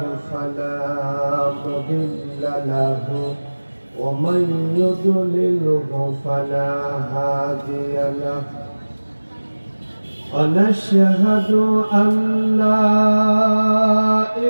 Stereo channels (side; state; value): both; inverted; correlation -1.00